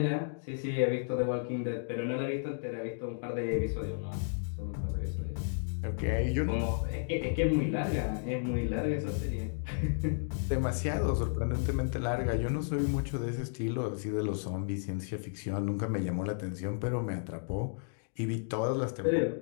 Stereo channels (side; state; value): right; silent; digital silence